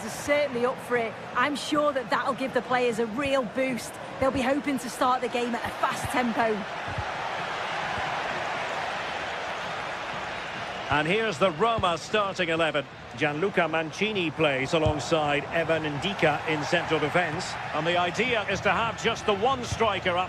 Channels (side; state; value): both; identical; correlation 1.00